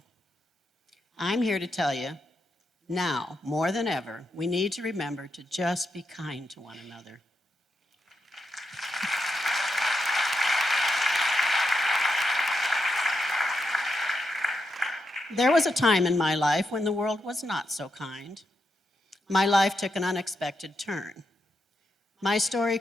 I'm here to tell you, now, more than ever, we need to remember to just be kind to one another. There was a time in my life when the world was not so kind. My life took an unexpected turn. My story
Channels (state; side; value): normal; both; correlation 0.84